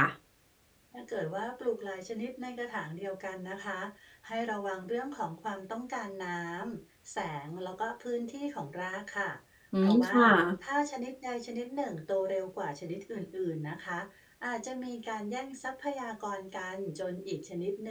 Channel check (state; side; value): identical; both; correlation 1.00